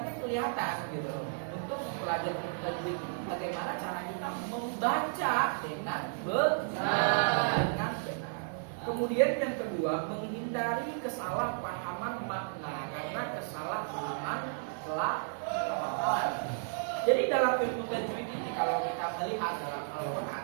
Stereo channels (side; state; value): left; silent; digital silence